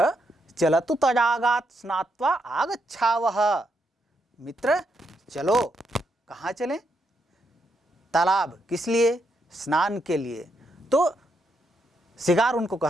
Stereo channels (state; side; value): normal; both; correlation 0.79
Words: चलतु तडागात् स्नात्वा आगच्छावः, मित्र चलो, कहाँ चलें, तालाब, किस लिए, स्नान के लिए। तो सियार उनको